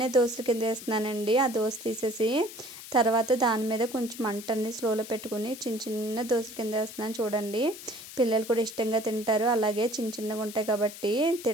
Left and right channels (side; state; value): left; noise; hiss, 14 dB below the sound